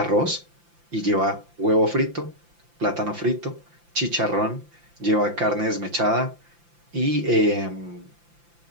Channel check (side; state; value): left; late; 5.8 ms